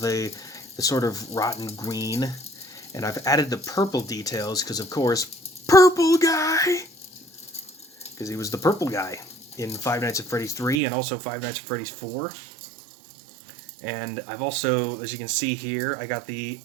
sort of rotten green, and I've added the purple details because, of course, purple guy, because he was the purple guy in Five Nights at Freddy's 3 and also Five Nights at Freddy's 4. And I've also, as you can see here, I got the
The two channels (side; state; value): left; drops out; at 10.8 s